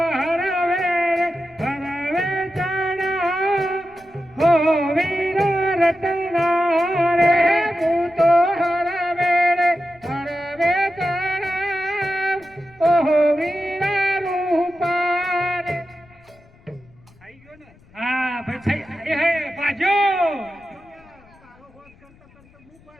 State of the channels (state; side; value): noise; left; rumble, 28 dB below the sound